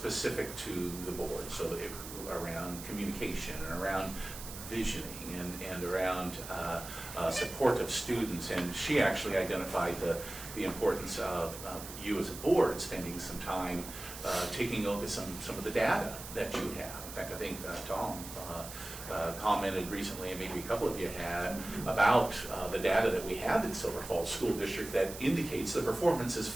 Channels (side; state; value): right; noise; hiss, 11 dB below the sound